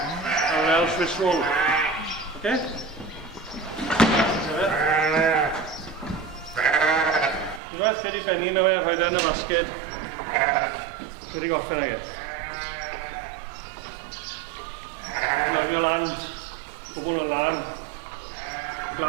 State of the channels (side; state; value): left; drops out; at 7.6 s